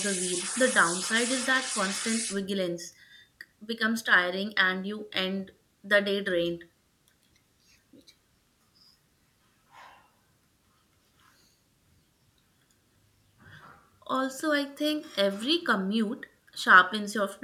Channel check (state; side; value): identical; both; correlation 1.00